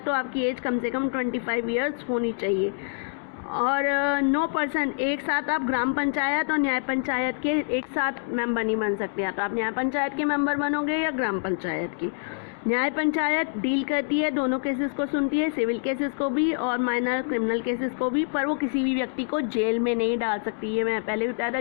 तो आपकी एज कम से कम 25 ईयर्स होनी चाहिए। और नो पर्सन, एक साथ आप ग्राम पंचायत और न्याय पंचायत के एक साथ मेंबर नहीं बन सकते। या तो आप न्याय पंचायत के मेंबर बनोगे या ग्राम पंचायत की। न्याय पंचायत डील करती है, दोनों केसेस को सुनती है, सिविल केसेस को भी और माइनर क्रिमिनल केसेस को भी, पर वो किसी भी व्यक्ति को जेल में नहीं डाल सकती। ये मैं पहले भी बताया था,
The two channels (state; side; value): silent; right; digital silence